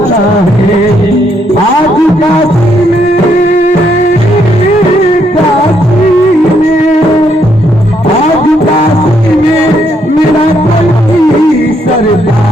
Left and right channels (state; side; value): normal; both; correlation 0.73